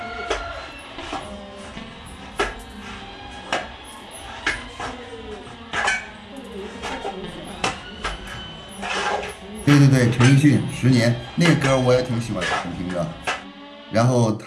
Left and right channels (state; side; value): identical; both; correlation 1.00